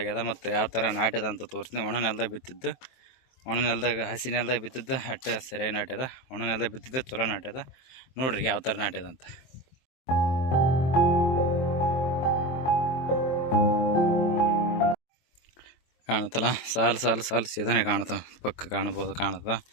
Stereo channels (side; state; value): right; late; 23 ms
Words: ಮತ್ತು ಯಾವ ಥರ ನಾಟ್ಯದ ಅಂತ ತೋರಿಸ್ತೀನಿ. ಒಣ ನೆಲದಾಗ ಬಿತ್ತಿದ್ದು, ಒಣ ನೆಲದಾಗ ಹಸಿ ನೆಲದಾಗ ಬಿತ್ತಿದ್ದು ಅಟ್ಟೆ ಸರಿಯಾಗಿ ನಾಟ್ಯದ, ಒಣ ನೆಲದಾಗ ಬಿತ್ತಿದ್ದು ಚಲೋ ನಾಟ್ಯದ. ನೋಡ್ರಿ ಯಾವ ಥರ ನಾಟ್ಯದ ಅಂತ. ಕಾಣುತ್ತಲ್ಲ, ಸಾಲು ಸಾಲು ಸಾಲು ಸೀದನೆ ಕಾಣುತ್ತ, ಪಕ್ಕ ಕಾಣುತ್ತ